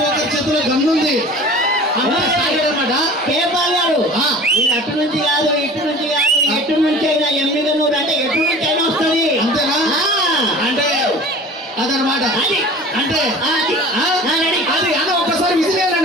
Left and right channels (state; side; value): normal; both; correlation 0.41